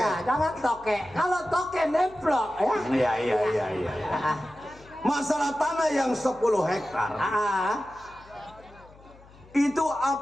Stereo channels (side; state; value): left; noise; hum, 24 dB below the sound